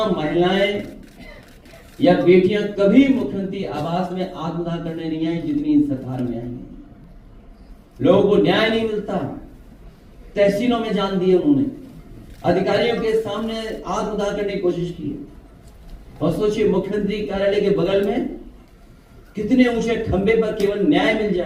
महिलाएं या बेटियां कभी मुख्यमंत्री आवास में आत्मदाह करने नहीं आई जितनी इस सरकार में आई है। लोगों को न्याय नहीं मिलता, तहसीलों में जान दिए उन्होंने, अधिकारियों के सामने आत्मदाह करने की कोशिश की। और सोचिए मुख्यमंत्री कार्यालय के बगल में कितने ऊंचे खंबे पर केवल न्याय मिल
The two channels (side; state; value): both; identical; correlation 1.00